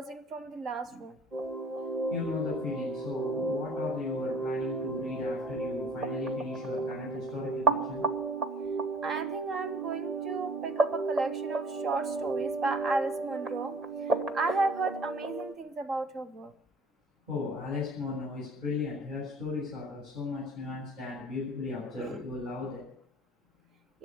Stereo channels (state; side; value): normal; both; correlation 0.50